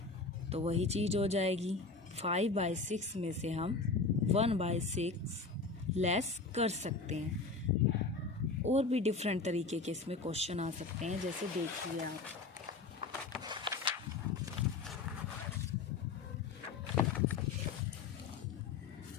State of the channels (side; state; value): right; quieter; 4.1 dB